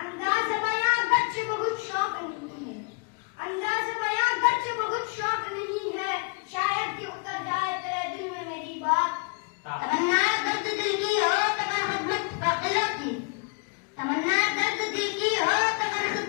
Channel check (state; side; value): quieter; right; 33.6 dB